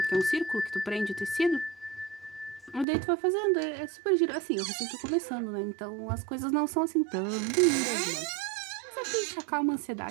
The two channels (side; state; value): left; drops out; at 2.9 s